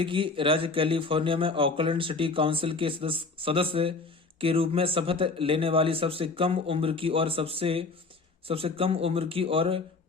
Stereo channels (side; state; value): right; quieter; 3.9 dB